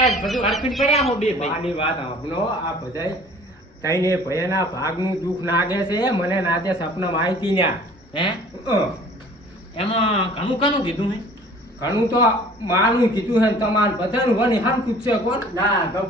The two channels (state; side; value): normal; both; correlation 0.50